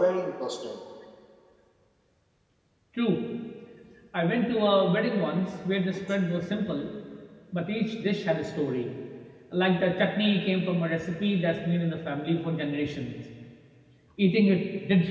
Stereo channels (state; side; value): identical; both; correlation 1.00